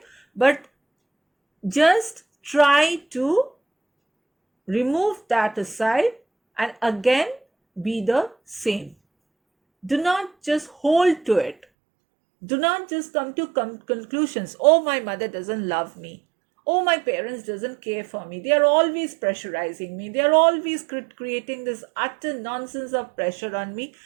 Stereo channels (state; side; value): drops out; left; at 11.6 s